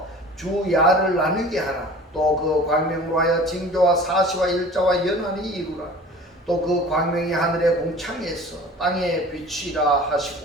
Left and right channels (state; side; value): normal; both; correlation 0.43